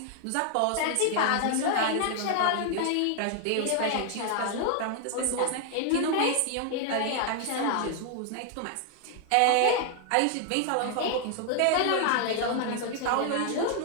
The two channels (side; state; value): both; different; correlation 0.00